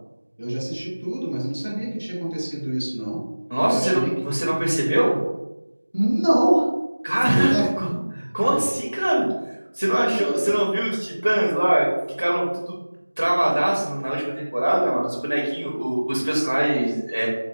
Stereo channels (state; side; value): inverted; both; correlation -1.00